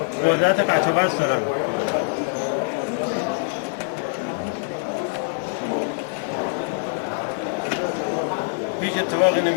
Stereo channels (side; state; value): right; silent; digital silence